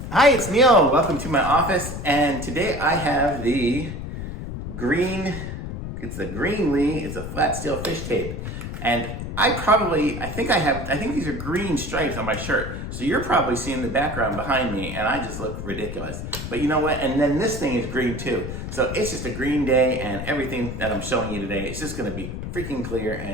Hi, it's Neil. Welcome to my office, and today I have the Greenlee. It's a flat steel fish tape, and I think these are green stripes on my shirt. So you're probably seeing the background behind me, and I just look ridiculous. But you know what? And then this thing is green too. So it's just a green day, and everything that I'm showing you today is just going to be freaking clear.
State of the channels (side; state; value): left; noise; rumble, 7 dB below the sound